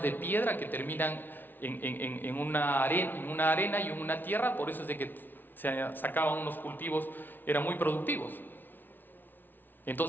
de piedra que terminan en una arena y en una tierra, por eso es de que se sacaban unos cultivos, eran muy productivos.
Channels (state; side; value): late; right; 0.092 ms